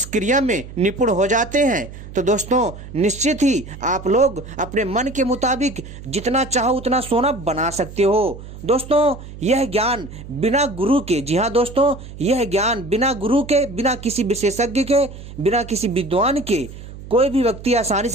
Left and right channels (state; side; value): noise; right; hum, 14 dB below the sound